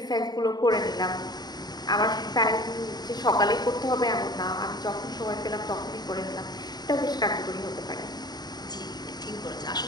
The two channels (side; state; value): right; late; 0.20 ms